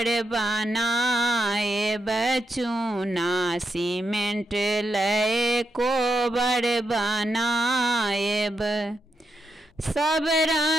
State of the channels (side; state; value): both; normal; correlation 0.84